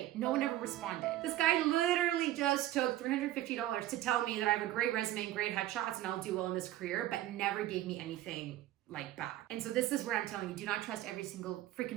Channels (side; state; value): left; quieter; 14.2 dB